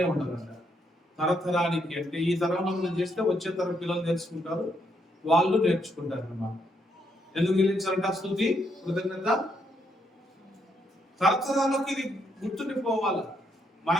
ఉండాలంట. తరతరానికి అంటే ఈ తరంలో మనం చేస్తే వచ్చే తరం పిల్లలు నేర్చుకుంటారు, వాళ్ళు నేర్చుకుంటారు అన్నమాట. ఎందుకు చెల్లించాలంట స్తుతి, కృతజ్ఞత? తరతరాలకు ఇది గుర్తుండిపోవాలి,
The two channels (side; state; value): both; normal; correlation 0.75